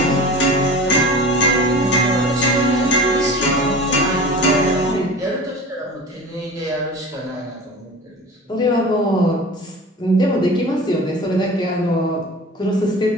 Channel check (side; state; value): both; normal; correlation 0.36